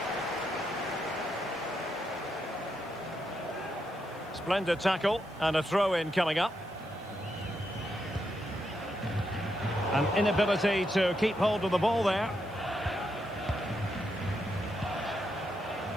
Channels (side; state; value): left; noise; hiss, 28 dB below the sound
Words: Splendid tackle and a throw-in coming up. An inability to keep hold of the ball there.